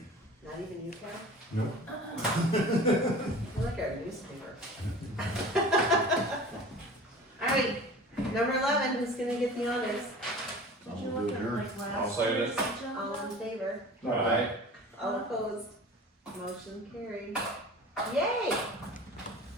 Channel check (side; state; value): both; normal; correlation 0.40